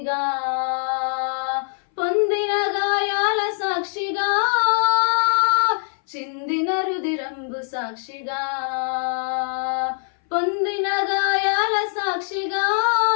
పొందిన గాయాల సాక్షిగా, చిందిన రుధిరంబు సాక్షిగా, పొందిన గాయాల సాక్షిగా,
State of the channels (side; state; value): right; silent; 60 dB below the other